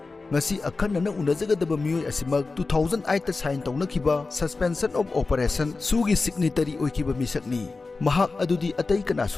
Ngasi akhanna unajagadaba miyoi asimak 2008 ta sign tawnakhiba suspension of operation SoO Signatory oikiba misakni. Mahak adudi atay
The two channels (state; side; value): quieter; right; 3.9 dB